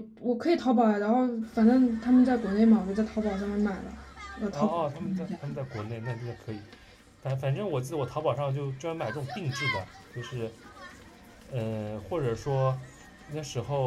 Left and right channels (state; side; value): identical; both; correlation 1.00